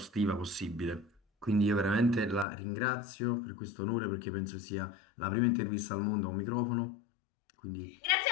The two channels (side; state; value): right; drops out; at 2.5 s